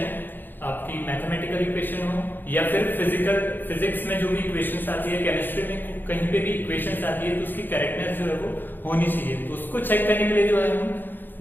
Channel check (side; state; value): right; late; 0.092 ms